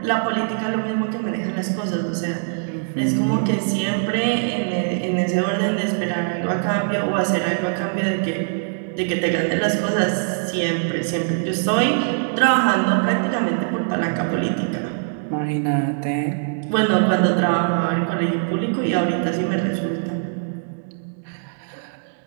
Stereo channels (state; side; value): silent; left; digital silence